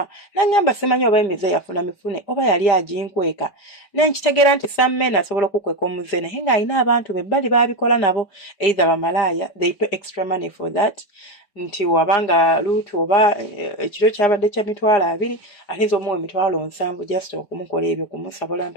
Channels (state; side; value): late; right; 5.2 ms